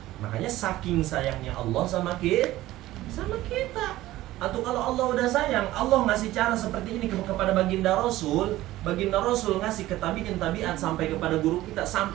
Makanya saking sayangnya Allah sama kita. Atau kalau Allah udah sayang, Allah ngasih cara seperti ini kepada baginda Rasul. Baginda Rasul ngasih ketabian-tabiat sampai kepada guru kita.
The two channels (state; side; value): quieter; left; 16.1 dB